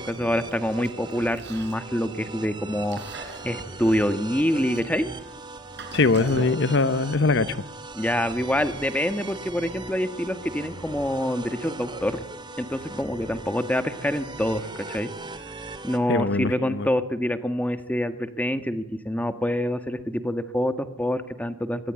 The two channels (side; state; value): both; normal; correlation 0.68